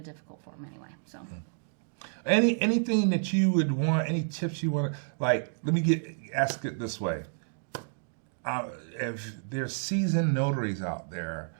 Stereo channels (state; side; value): silent; left; digital silence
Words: difficult form anyway. So anything that you would want, any tips you want to, like, let me ask it this way. If there's seasoned notaries out there